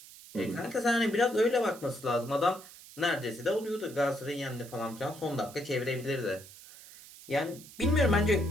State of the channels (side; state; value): right; noise; hiss, 18 dB below the sound